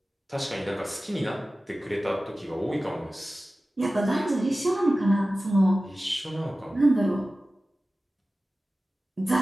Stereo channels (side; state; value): both; normal; correlation 0.96